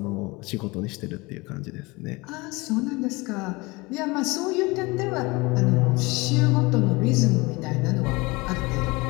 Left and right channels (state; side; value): quieter; right; 24.0 dB